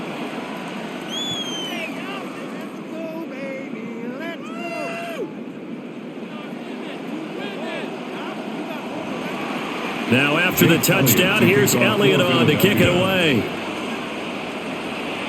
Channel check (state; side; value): identical; both; correlation 1.00